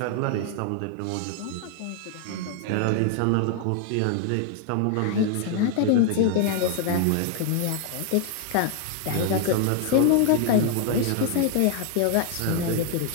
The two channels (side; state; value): both; different; correlation 0.00